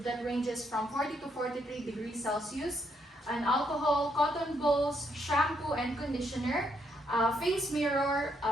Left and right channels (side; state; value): both; normal; correlation 0.75